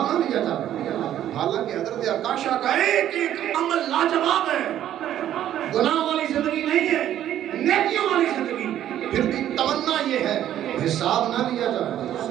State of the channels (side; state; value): left; quieter; 11.6 dB